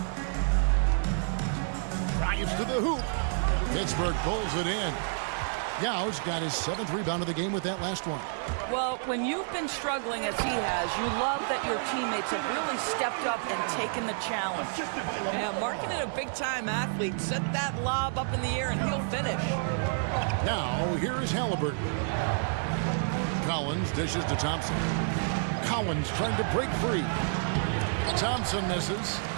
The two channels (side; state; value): left; silent; 58 dB below the other